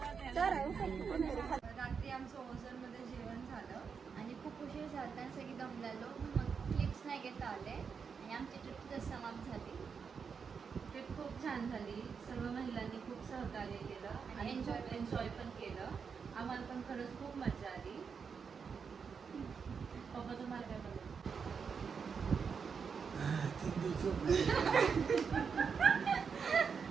रात्री आमचं ओझरमध्ये जेवण झालं आणि खूप उशीर झाला आणि सगळी दमलेलो. मग क्लिप्स नाही घेता आले आणि आमची ट्रिप समाप्त झाली. ट्रिप खूप छान झाली. सर्व महिलांनी खूप सहकार्य केलं आणि एन्जॉय पण केलं. आम्हाला पण खरंच खूप मजा आली. पप्पा तुम्हाला काय बोलायचं?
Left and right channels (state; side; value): quieter; left; 6.0 dB